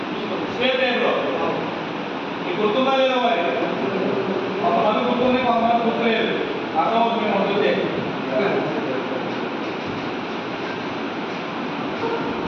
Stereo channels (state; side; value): identical; both; correlation 1.00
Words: స్క్వేర్ టైప్లో. మీకు గుర్తుందా లేదా? మరి కొంతమంది గుర్తుంది, కొంతమంది గుర్తులేదు. అర్థమవుతుంది మేము వద్దుతే